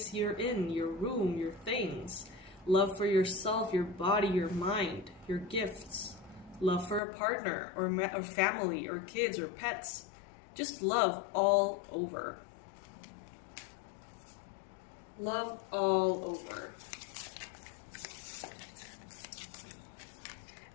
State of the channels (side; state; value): right; drops out; at 7.0 s